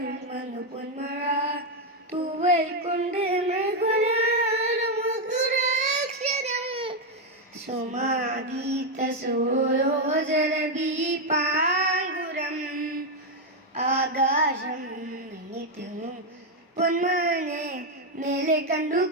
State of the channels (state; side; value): normal; both; correlation 0.03